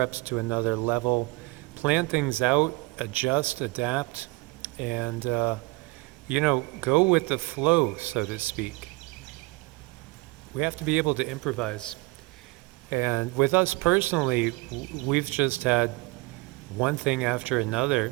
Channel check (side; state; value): left; quieter; 24.8 dB